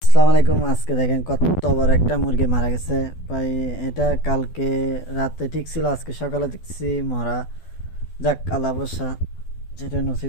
আসসালামু আলাইকুম। আজকে দেখেন কত বড় একটা মুরগি মারা গেছে ভাই। এটা কালকে রাতে ঠিক ছিল, আজকে সকালে দেখছি মরা। যাক, আল্লাহ ভরসা, যেটা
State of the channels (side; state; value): right; late; 12 ms